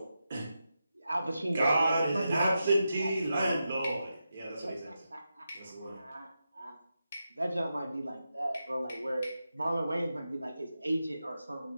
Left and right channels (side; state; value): both; inverted; correlation -0.88